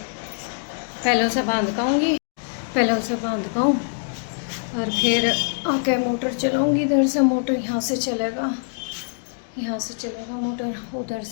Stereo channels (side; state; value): right; silent; digital silence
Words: पहले उसे बांध काऊँगी, और फिर आके मोटर चलाऊँगी। इधर से मोटर यहाँ से चलेगा मोटर। उधर